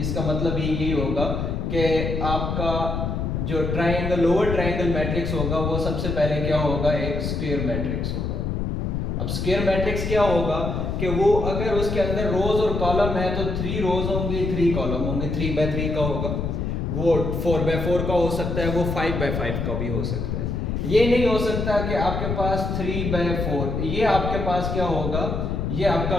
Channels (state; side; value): noise; left; rumble, 2 dB below the sound